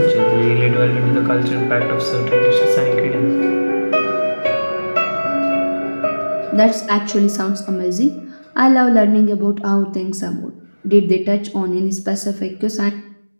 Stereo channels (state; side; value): inverted; both; correlation -1.00